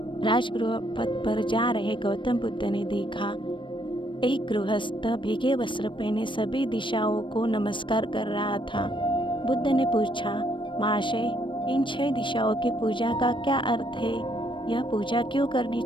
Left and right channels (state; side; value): late; right; 0.24 ms